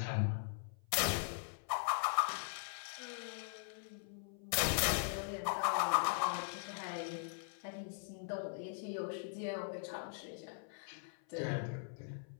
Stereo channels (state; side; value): silent; right; 51 dB below the other